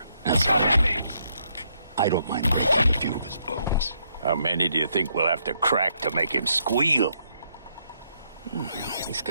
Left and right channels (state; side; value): inverted; both; correlation -0.74